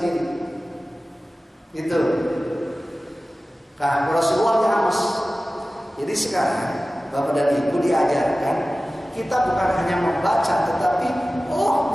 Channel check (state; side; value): normal; both; correlation 0.96